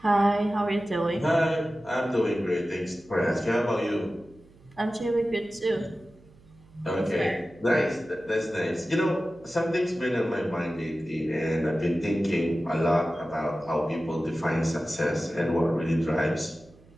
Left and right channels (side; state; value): right; noise; hum, 26 dB below the sound